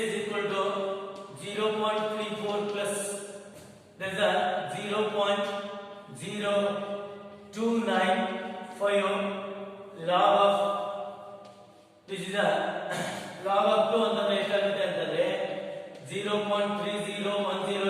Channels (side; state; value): both; identical; correlation 1.00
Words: is equal to 0.34 plus there is a 0.0295 log of this is a log of 2 ಅಂತಂದ್ರೆ ಎಷ್ಟಾಗುತ್ತೆ ಅಂತಂದ್ರೆ 0.3010